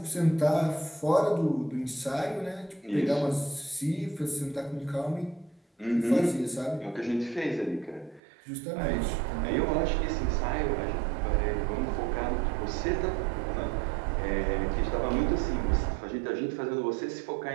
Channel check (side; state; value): left; drops out; at 8.2 s